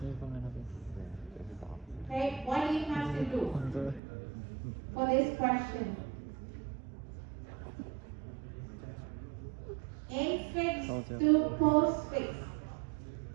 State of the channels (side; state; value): left; drops out; at 4.0 s